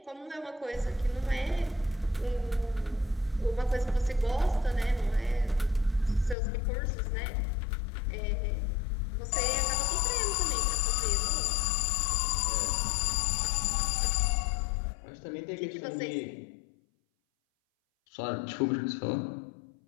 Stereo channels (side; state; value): right; drops out; at 6.4 s